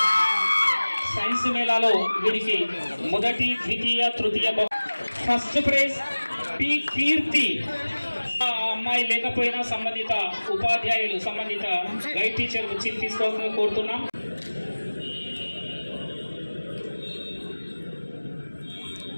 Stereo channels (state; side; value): inverted; both; correlation -1.00